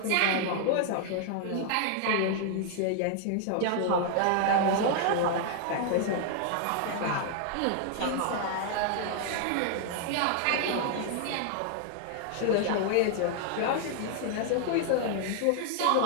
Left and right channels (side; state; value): both; different; correlation 0.00